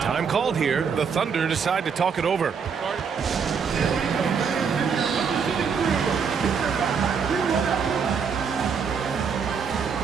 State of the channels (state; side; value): quieter; left; 6.2 dB